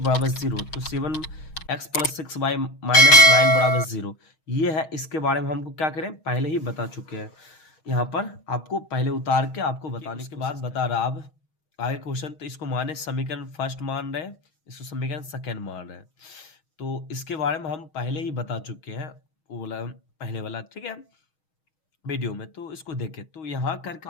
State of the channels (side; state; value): right; late; 6.3 ms